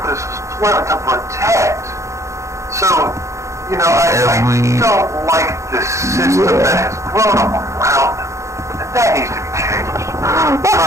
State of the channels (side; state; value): left; late; 0.14 ms